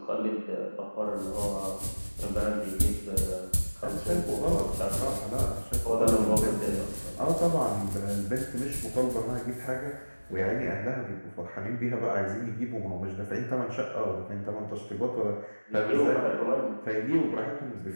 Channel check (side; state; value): both; inverted; correlation -1.00